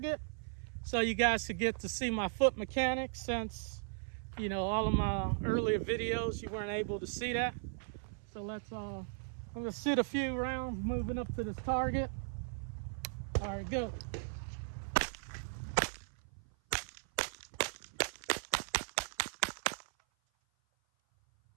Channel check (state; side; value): silent; left; 53 dB below the other